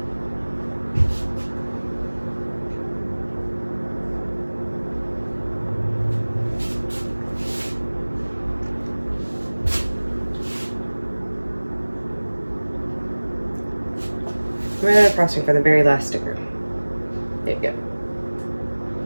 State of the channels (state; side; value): inverted; both; correlation -1.00